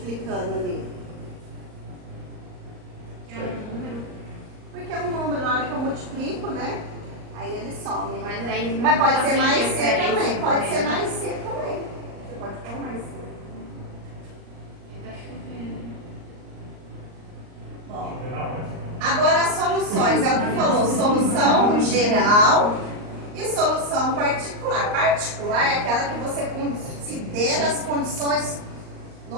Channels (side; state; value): left; late; 38 ms